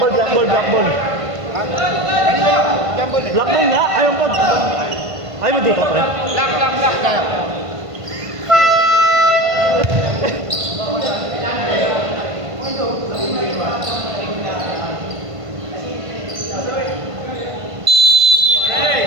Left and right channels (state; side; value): late; left; 1.5 ms